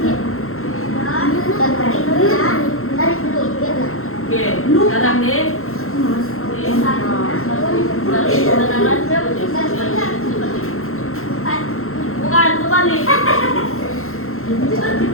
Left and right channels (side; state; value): right; late; 0.62 ms